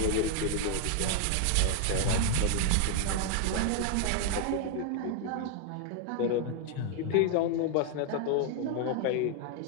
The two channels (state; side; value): different; both; correlation 0.00